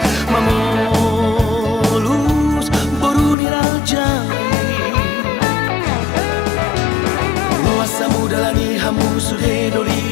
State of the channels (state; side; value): drops out; right; at 3.4 s